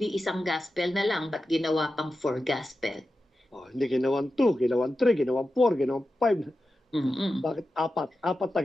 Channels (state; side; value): normal; both; correlation 0.92